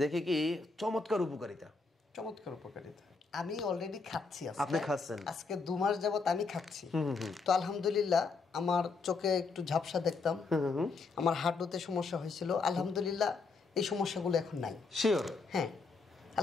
দেখে কি চমৎকার উপকারিতা। আমি অলরেডি খাচ্ছি। আপনি খাচ্ছেন? আজকে 2 মাস যাবত আমি খাচ্ছি। তো আলহামদুলিল্লাহ আমার চোখে একটু ঝাপসা দেখতাম, আমার হাঁটুতে সমস্যা হয়েছিল, আলহামদুলিল্লাহ এই সমস্যাগুলো এখন নাই। শিওর? হ্যাঁ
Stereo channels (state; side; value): quieter; right; 4.3 dB